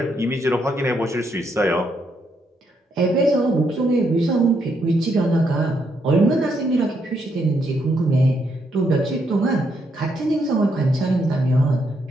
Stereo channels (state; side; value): normal; both; correlation 0.77